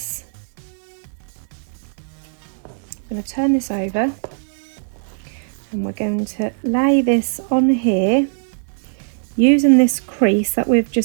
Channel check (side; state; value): left; silent; digital silence